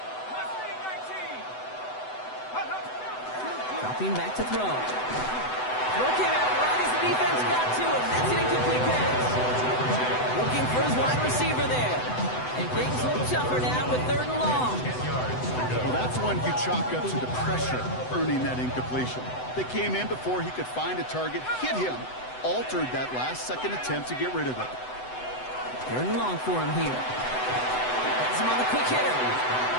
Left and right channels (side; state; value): right; late; 7.9 ms